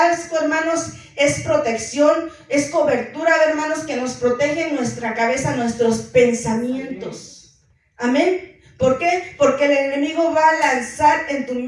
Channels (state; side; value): identical; both; correlation 1.00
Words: hermanos, es protección, es cobertura, hermanos, que nos protege nuestra cabeza, nuestros pensamientos. Amén. ¿Por qué? Porque el enemigo va a lanzar en tu